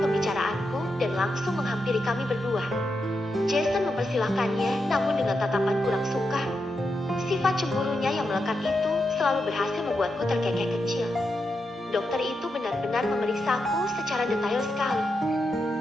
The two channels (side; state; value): both; normal; correlation 0.86